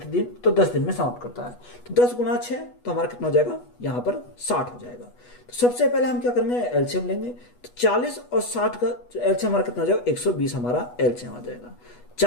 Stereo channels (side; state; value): right; late; 8.2 ms